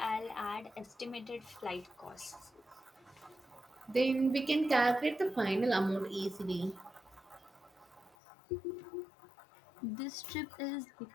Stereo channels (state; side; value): drops out; right; at 8.2 s